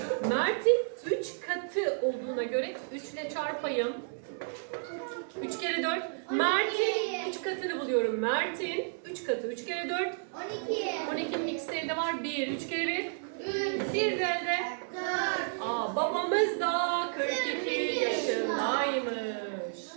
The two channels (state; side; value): silent; left; 57 dB below the other